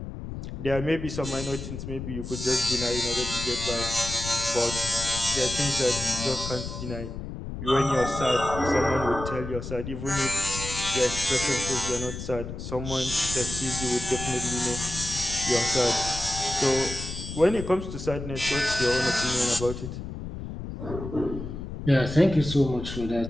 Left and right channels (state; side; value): noise; left; rumble, 8 dB below the sound